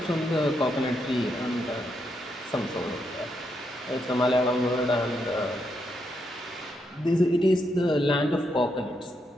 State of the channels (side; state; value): both; normal; correlation 0.80